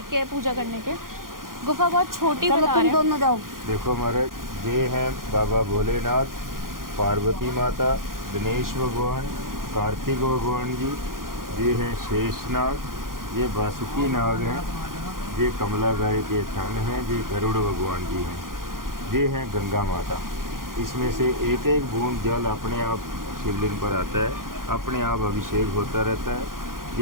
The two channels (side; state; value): left; late; 0.91 ms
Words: पूजा करने के। गुफा बहुत छोटी बता रहे हैं। दोनों जाओ। देखो महाराज, ये हैं बाबा भोलेनाथ, पार्वती माता, गणेश भगवान, कार्तिक भगवान जी, ये हैं शेषनाग, ये वासुकी नाग हैं, ये कमला गाय के थन हैं, ये गरुड़ भगवान जी हैं, ये हैं गंगा माता। इसमें से एक एक बूंद जल अपने आप शिवलिंग पर आता है, अपने आप अभिषेक होता रहता है।